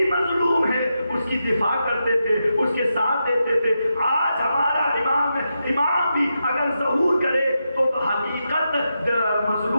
مظلوم ہے اس کی دفاع کرتے تھے، اس کے ساتھ دیتے تھے۔ آج ہمارا امام بھی اگر ظہور کرے تو حقیقت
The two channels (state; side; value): inverted; both; correlation -0.87